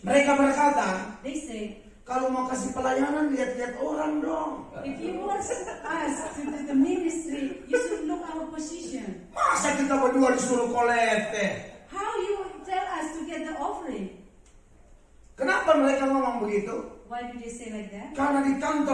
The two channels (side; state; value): both; identical; correlation 1.00